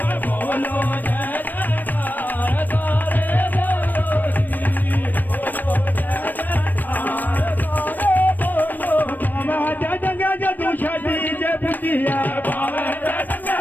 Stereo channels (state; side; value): late; right; 0.089 ms